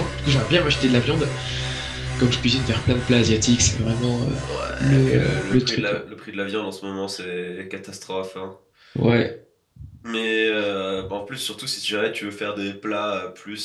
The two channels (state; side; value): identical; both; correlation 1.00